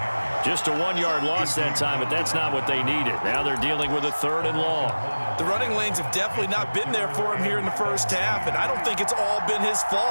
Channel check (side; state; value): both; inverted; correlation -1.00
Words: Just a 1-yard loss that time, but that's not what they needed. Now they're dealing with a 3rd and long. The running lanes have definitely not been there for him here in the first half, and I don't think it's all been his